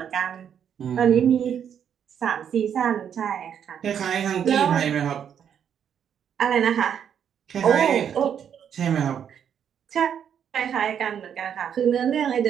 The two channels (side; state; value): left; quieter; 8.5 dB